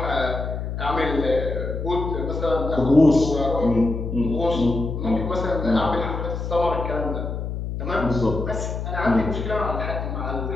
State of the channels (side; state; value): left; noise; hum, 4 dB below the sound